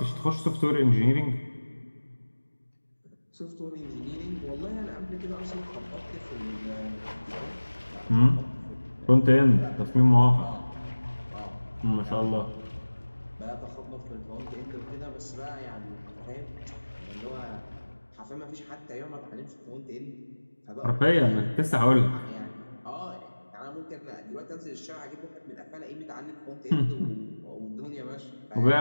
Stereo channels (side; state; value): both; inverted; correlation -1.00